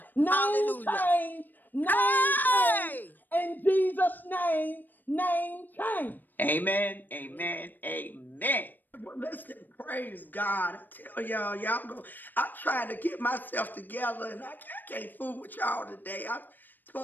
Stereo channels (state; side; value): late; right; 0.090 ms